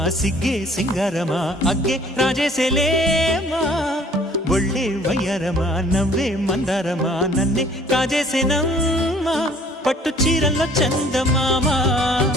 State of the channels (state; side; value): normal; both; correlation 0.55